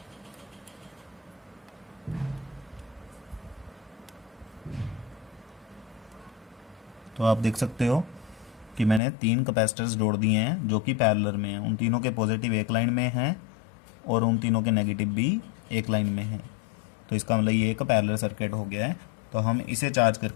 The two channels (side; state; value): right; drops out; at 9.0 s